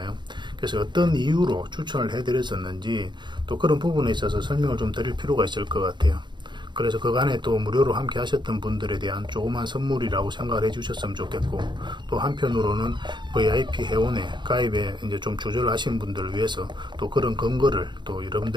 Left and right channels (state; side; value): late; left; 0.22 ms